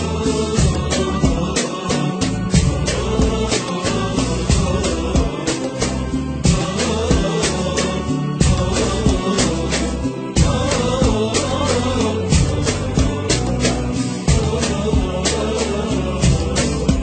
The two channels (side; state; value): both; identical; correlation 1.00